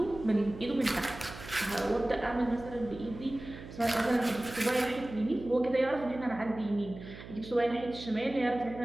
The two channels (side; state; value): right; noise; hum, 14 dB below the sound